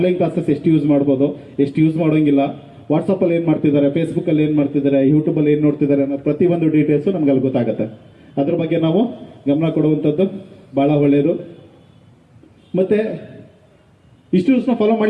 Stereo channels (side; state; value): both; identical; correlation 1.00